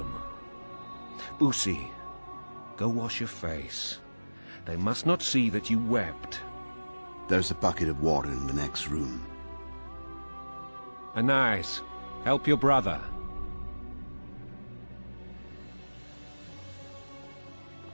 Boosie, go wash your face. They must not see that you wept. There's a bucket of water in the next room. Anais, help your brother.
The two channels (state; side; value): inverted; both; correlation -1.00